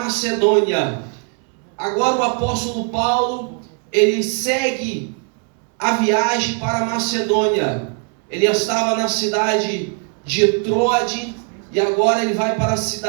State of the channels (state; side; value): quieter; left; 39.6 dB